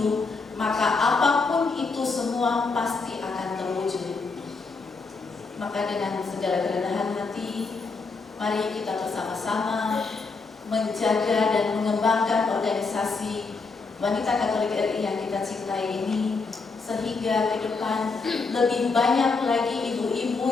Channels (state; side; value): quieter; right; 4.3 dB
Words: maka apapun itu semua pasti akan terwujud. Maka dengan segala kerendahan hati, mari kita bersama-sama menjaga dan mengembangkan organisasi Wanita Katolik RI yang kita cintai ini, sehingga ke depan lebih banyak lagi ibu-ibu